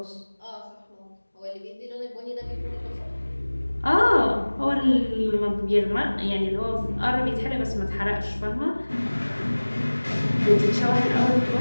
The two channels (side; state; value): both; inverted; correlation -1.00